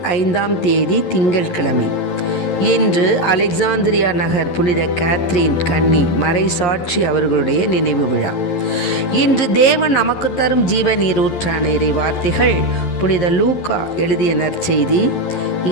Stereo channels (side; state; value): right; late; 11 ms